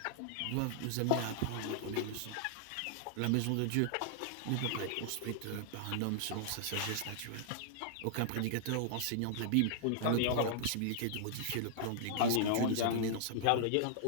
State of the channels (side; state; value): both; different; correlation -0.01